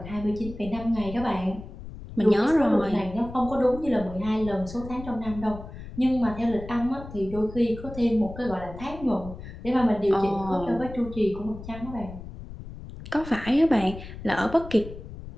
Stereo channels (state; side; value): noise; left; rumble, 13 dB below the sound